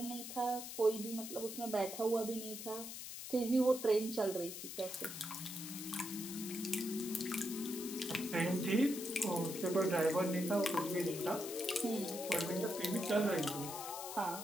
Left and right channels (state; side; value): noise; left; hiss, 8 dB below the sound